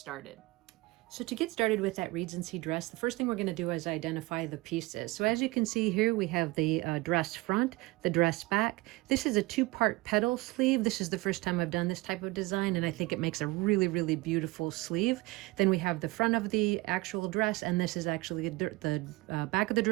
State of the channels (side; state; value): left; quieter; 22.1 dB